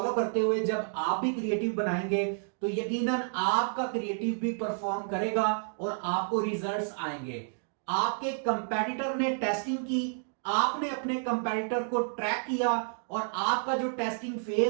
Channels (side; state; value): left; silent; 58 dB below the other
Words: करते हुए जब आप भी क्रिएटिव बनाएंगे तो यकीनन आपका क्रिएटिव भी परफॉर्म करेगा और आपको रिजल्ट्स आएंगे। आपके कंपेटिटर ने टेस्टिंग की, आपने अपने कंपेटिटर को ट्रैक किया और आपका जो टेस्टिंग